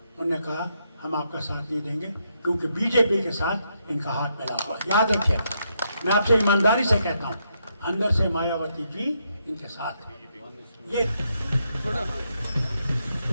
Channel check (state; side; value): inverted; both; correlation -0.78